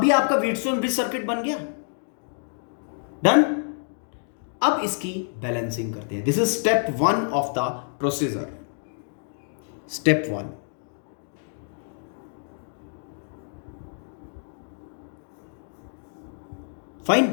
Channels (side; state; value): right; silent; digital silence